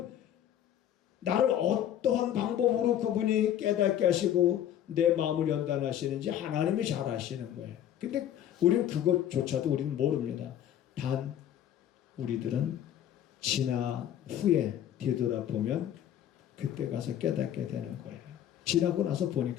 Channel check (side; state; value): right; quieter; 10.8 dB